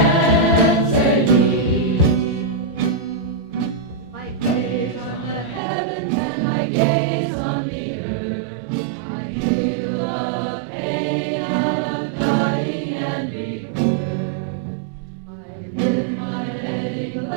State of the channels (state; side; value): drops out; left; at 5.6 s